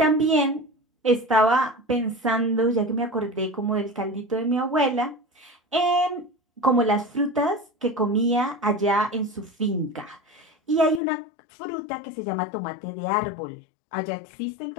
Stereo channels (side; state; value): right; drops out; at 11.0 s